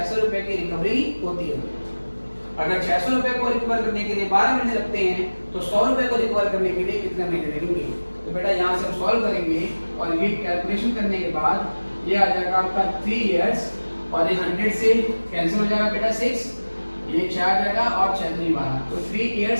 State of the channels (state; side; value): inverted; both; correlation -1.00